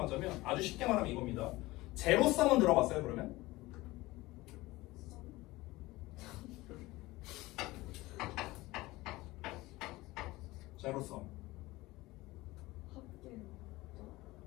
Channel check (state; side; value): quieter; right; 19.7 dB